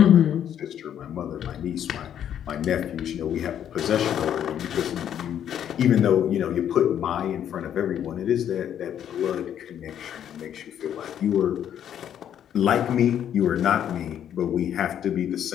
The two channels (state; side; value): quieter; right; 9.8 dB